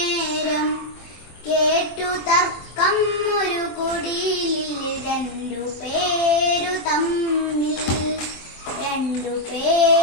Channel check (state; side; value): late; right; 24 ms